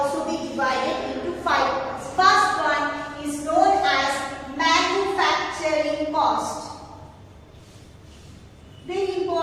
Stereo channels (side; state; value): both; identical; correlation 1.00